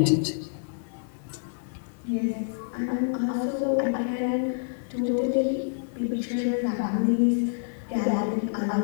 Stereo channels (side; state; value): right; silent; 60 dB below the other